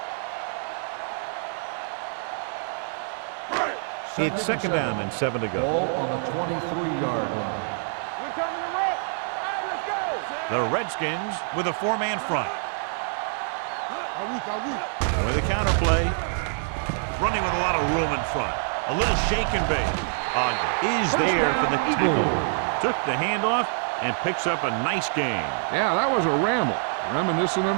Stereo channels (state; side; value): silent; left; 61 dB below the other